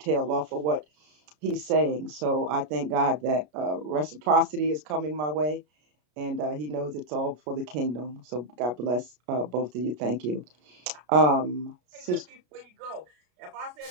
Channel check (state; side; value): late; left; 33 ms